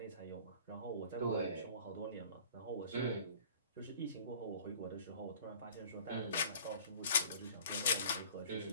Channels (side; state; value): both; inverted; correlation -0.46